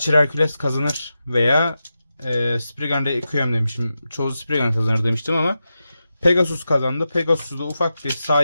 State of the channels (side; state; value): both; inverted; correlation -0.90